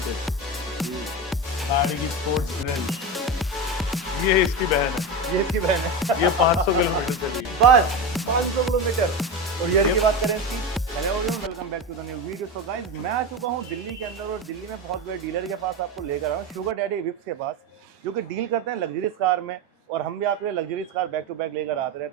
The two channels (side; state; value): both; normal; correlation 0.20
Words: किट, गाड़ी की स्पोर्ट्स ग्रिल, ये इसकी बहन है, ये इसकी बहन है। ये 500 किलोमीटर चली है। बस 500 किलोमीटर। और ईयर की बात करें इसकी, hello everyone, welcome back to the new video. So guys, मैं आ चुका हूँ दिल्ली के अंदर और दिल्ली में बहुत बड़े डीलर के पास आपको लेकर आया हूँ, शुगर डैडी विप्स के पास, जो कि डील करते हैं लग्जरीज कार में। और हम भी आपके लिए luxuries car back to back लेकर आते